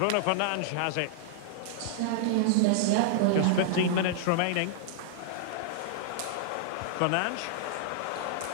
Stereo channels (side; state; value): both; different; correlation -0.01